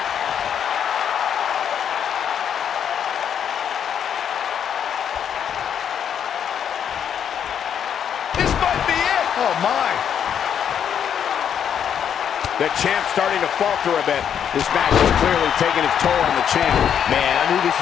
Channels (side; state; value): right; quieter; 8.5 dB